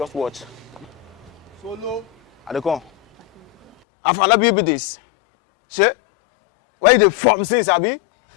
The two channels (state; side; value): drops out; right; at 3.8 s